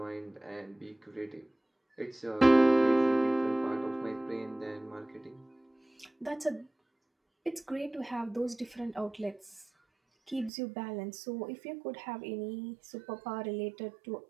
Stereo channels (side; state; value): left; drops out; at 10.5 s